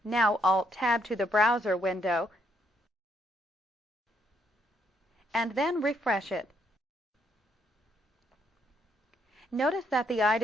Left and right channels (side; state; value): both; normal; correlation 0.72